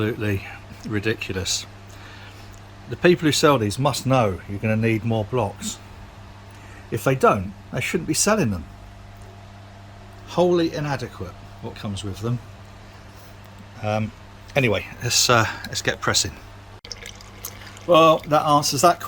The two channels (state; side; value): identical; both; correlation 1.00